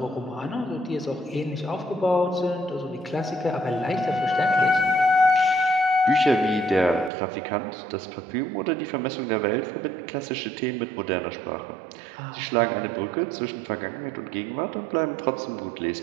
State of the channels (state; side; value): drops out; left; at 7.1 s